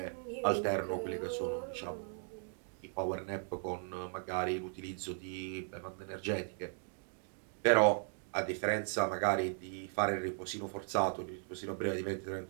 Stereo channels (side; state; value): left; silent; 53 dB below the other